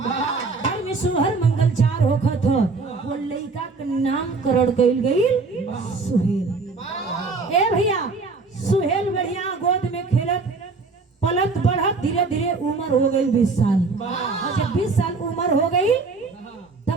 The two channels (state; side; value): quieter; left; 4.1 dB